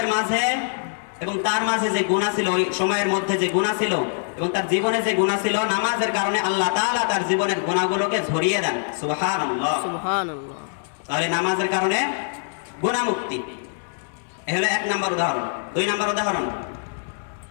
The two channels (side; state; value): right; silent; digital silence